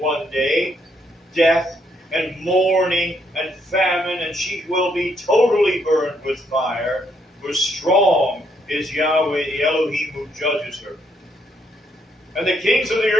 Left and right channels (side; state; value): both; normal; correlation 0.73